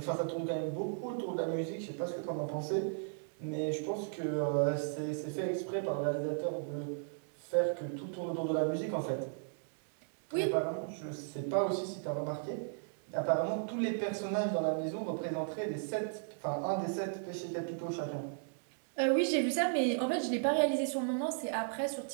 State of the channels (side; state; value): left; silent; digital silence